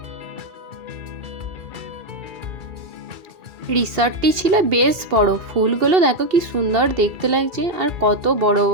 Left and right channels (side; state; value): left; late; 2.7 ms